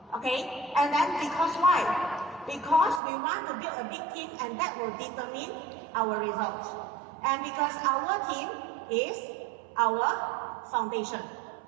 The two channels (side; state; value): left; drops out; at 3.0 s